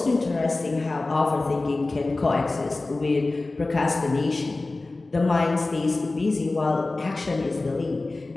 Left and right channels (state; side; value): quieter; right; 3.2 dB